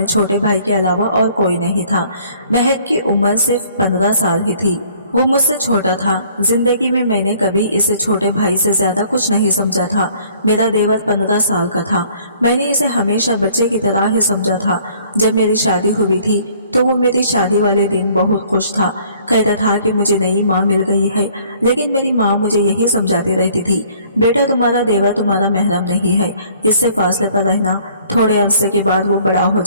छोटे भाई के अलावा और कोई नहीं था। महक की उम्र सिर्फ 15 साल ही थी। वो मुझसे छोटा था। जिंदगी में मैंने कभी इसे छोटे भाई से ज्यादा कुछ नहीं समझा था। मेरा देवर 15 साल का था। मैंने इसे हमेशा बच्चे की तरह ही समझा था। जब मेरी शादी हुई थी तो वो मेरी शादी वाले दिन बहुत खुश था। कहता था कि मुझे नई माँ मिल गई है। लेकिन मेरी माँ मुझे यही समझाती रहती थी, बेटा तुम्हारा देवर तुम्हारा महरम नहीं है, इससे फासले पर रहना। थोड़े अरसे के बाद वो बड़ा हो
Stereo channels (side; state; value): both; inverted; correlation -0.58